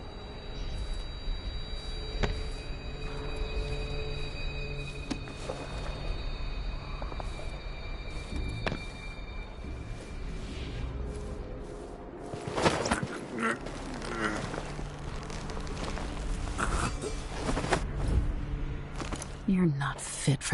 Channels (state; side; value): identical; both; correlation 1.00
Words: You're not fit